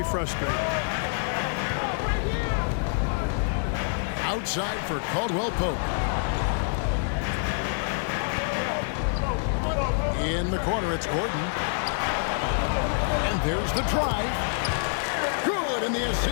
frustrating. Outside for Caldwell Pope. In the corner, it's Gordon. And there's the drive. Good, and the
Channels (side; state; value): right; silent; digital silence